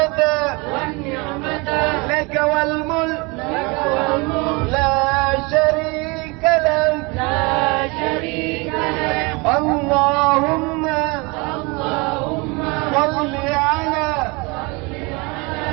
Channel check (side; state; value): left; quieter; 27.5 dB